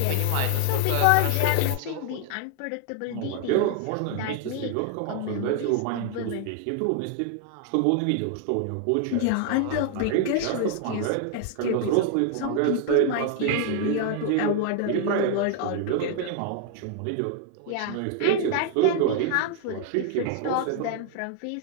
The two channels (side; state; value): both; different; correlation 0.00